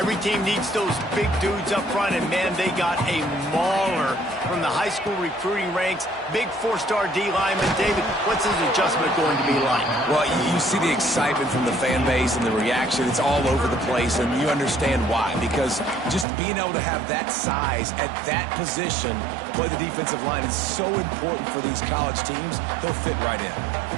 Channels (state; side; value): drops out; left; at 16.2 s